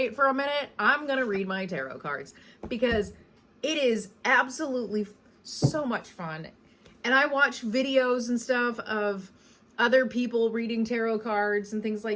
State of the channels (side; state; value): both; identical; correlation 1.00